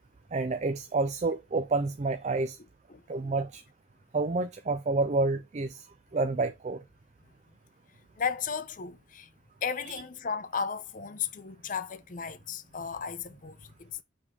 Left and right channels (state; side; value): normal; both; correlation 0.06